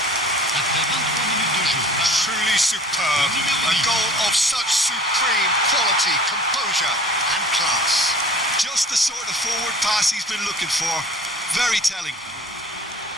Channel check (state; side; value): normal; both; correlation 0.46